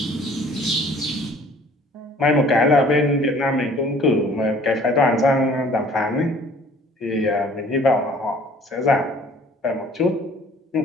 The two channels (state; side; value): normal; both; correlation 0.53